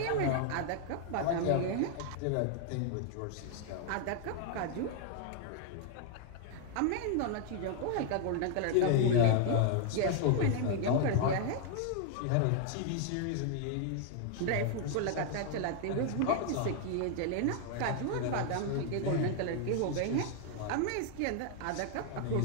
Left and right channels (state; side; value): different; both; correlation 0.00